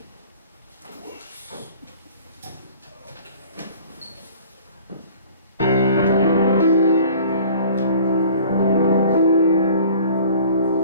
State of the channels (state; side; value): inverted; both; correlation -0.48